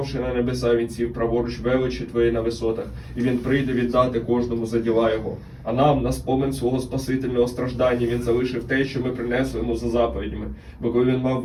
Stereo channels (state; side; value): identical; both; correlation 1.00